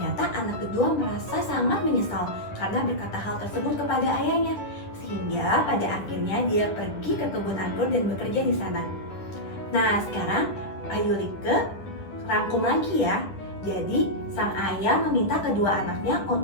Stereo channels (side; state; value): right; late; 10 ms